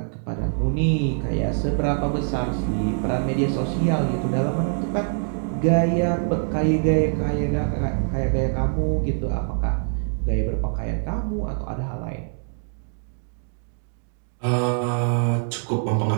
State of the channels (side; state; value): left; silent; 63 dB below the other